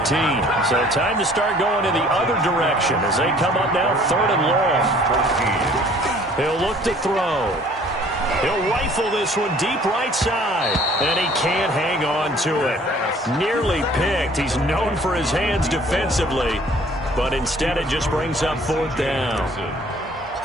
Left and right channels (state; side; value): normal; both; correlation 0.54